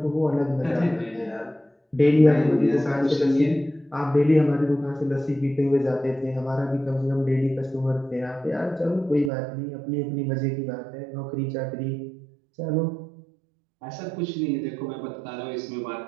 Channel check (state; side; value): drops out; left; at 9.3 s